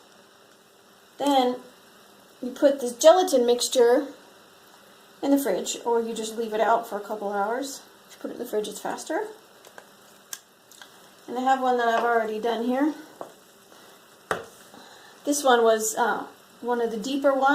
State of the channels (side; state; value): both; identical; correlation 1.00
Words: Then you put this gelatin mixture in the fridge, or you just leave it out for a couple hours. If you put it in the fridge, it's faster. And I have one that I've already done here. This one was one of the deeper